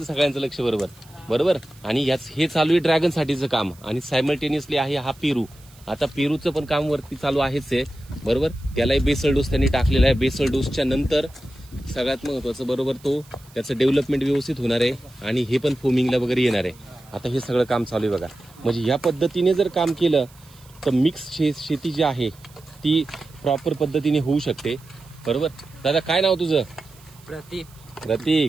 सगळ्यांचं लक्ष बरोबर बरोबर. आणि हे चालू आहे ड्रॅगन साठीचं काम आणि सायमल्टेनियसली आहे हा पेरू. आता पेरूचं पण काम वरती चालू आहेच आहे बरोबर. त्यालाही बेसल डोस त्यांनी टाकलेला आहे. बेसल डोसच्या नंतर सगळ्यात महत्वाचं बरोबर तो त्याचं डेव्हलपमेंट व्यवस्थित होणार आहे आणि हे पण फोमिंगला वगैरे येणार आहे. आता हे सगळं काम चालू आहे बघा. म्हणजे या पद्धतीने जर काम केलं तर मिक्स शेती जी आहे ती प्रॉपर पद्धतीने होऊ शकते बरोबर. दादा काय नाव तुझं? प्रतीक.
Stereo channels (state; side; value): noise; right; hiss, 26 dB below the sound